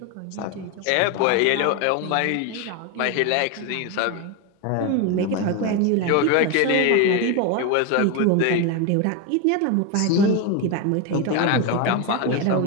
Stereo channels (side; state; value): both; different; correlation 0.02